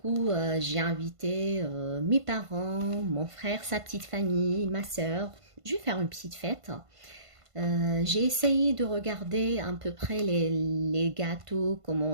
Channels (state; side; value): late; left; 1.5 ms